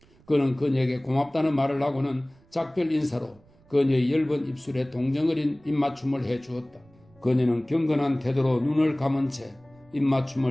그는 그녀에게 고맙다는 말을 하고는 작별 인사로 그녀의 엷은 입술에 동정 어린 입맞춤을 해 주었다. 그녀는 경건한 태도로 눈을 감은 채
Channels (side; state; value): right; noise; rumble, 30 dB below the sound